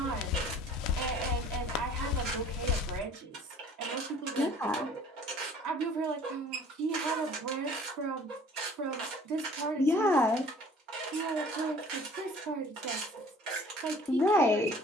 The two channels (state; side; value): normal; both; correlation 0.51